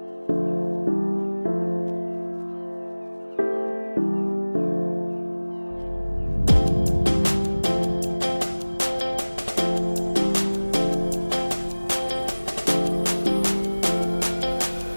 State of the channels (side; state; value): both; inverted; correlation -1.00